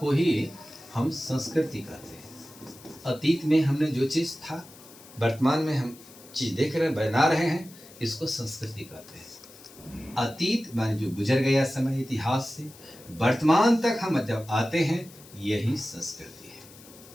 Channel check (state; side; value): noise; left; hiss, 21 dB below the sound